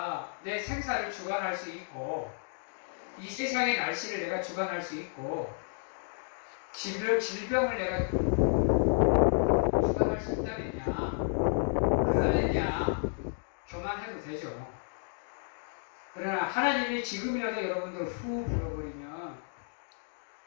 내 생사를 주관할 수 있고, 이 세상의 날씨를 내가 주관할 수 있고, 질병을 내가 주관할 수 있다면야, 그러면야 교만해도 되죠. 그러나 하나님이 지금이라도 여러분들 후 불어버리면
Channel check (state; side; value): silent; right; digital silence